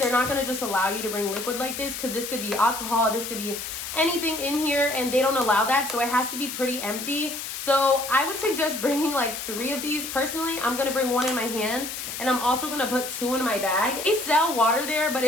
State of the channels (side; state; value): left; noise; hiss, 7 dB below the sound